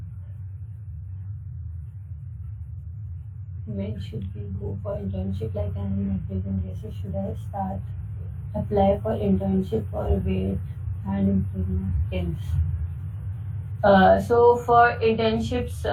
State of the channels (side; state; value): both; identical; correlation 1.00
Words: When should we go for internship? Like I'm in applicant basis, should I start apply for internship or wait and improve my skills? So for internships,